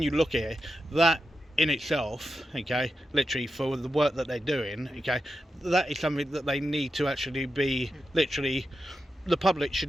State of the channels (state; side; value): normal; both; correlation 0.89